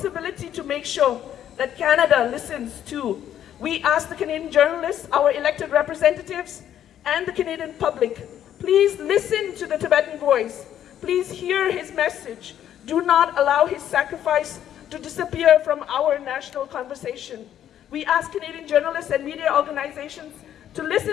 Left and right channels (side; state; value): right; quieter; 10.6 dB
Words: to make sure that Canada listens too. We ask the Canadian journalists, our elected representatives, and the Canadian public, please listen to the Tibetan voice. Please hear his message. Do not allow his sacrifice to disappear from our national conversation. We ask Canadian journalists and media organizations to